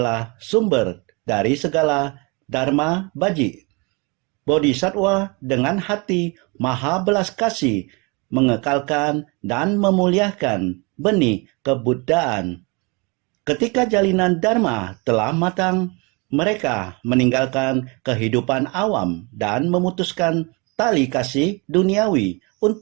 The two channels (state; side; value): quieter; left; 29.1 dB